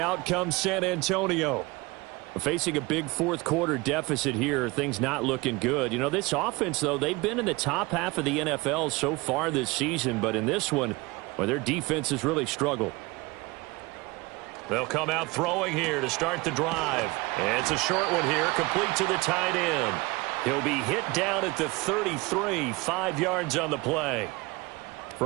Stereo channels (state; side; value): quieter; left; 23.5 dB